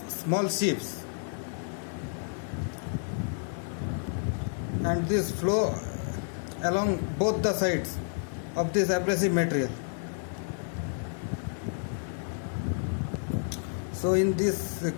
small chips, and this flow along both the sides of this abrasive material. So in this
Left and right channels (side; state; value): right; silent; digital silence